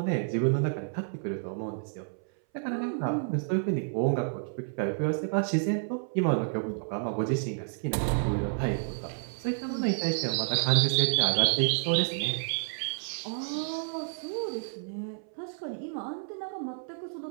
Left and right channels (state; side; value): silent; left; 58 dB below the other